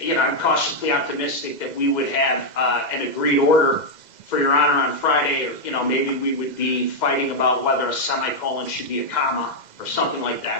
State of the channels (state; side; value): late; right; 2.1 ms